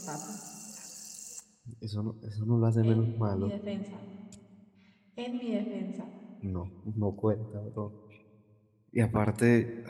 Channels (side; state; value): both; identical; correlation 1.00